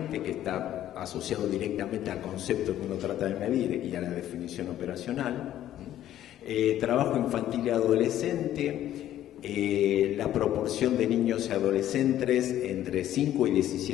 que está asociado directamente al concepto que uno trata de medir y a la definición operacional. Trabajo infantil y adolescente, la proporción de niños y adolescentes entre 5 y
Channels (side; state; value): right; quieter; 12.3 dB